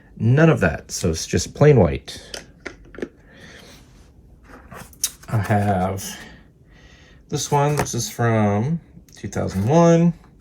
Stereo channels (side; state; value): both; identical; correlation 1.00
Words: none of that, so it's just plain white. I have this one. This is from 2001,